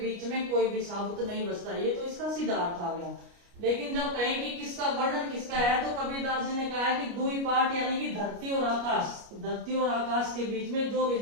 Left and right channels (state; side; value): late; left; 29 ms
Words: में कोई भी साबुत नहीं बचता। ये तो इसका सीधा अर्थ आ गया। लेकिन जब कहें कि किसका वर्णन किसका है, तो कबीरदास जी ने कहा है कि दुई पार्ट यानी कि धरती और आकाश के बीच में जो भी